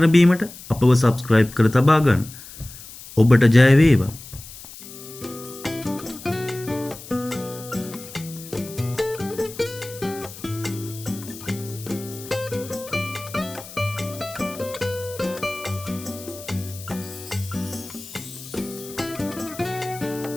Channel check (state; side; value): noise; left; hiss, 15 dB below the sound